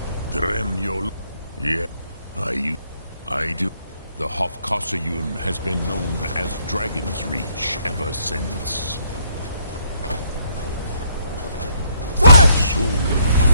Dremjol. Yeah, I do. The Hofkossayun has been known as Dragon's Reach ever since. Soon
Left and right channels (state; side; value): inverted; both; correlation -0.69